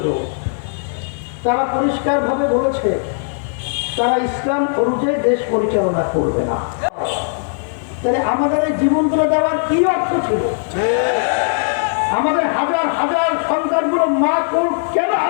তারা পরিষ্কারভাবে বলেছে তারা ইসলাম অনুযায়ী দেশ পরিচালনা করবে না। তাহলে আমাদের এই জীবনগুলো দেওয়ার কি অর্থ ছিল? আমাদের হাজার হাজার সন্তানগুলো মা কোল কেন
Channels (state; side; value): silent; right; digital silence